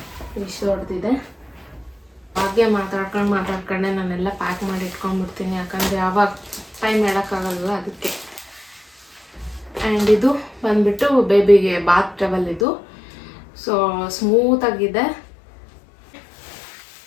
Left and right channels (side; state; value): right; drops out; at 12.7 s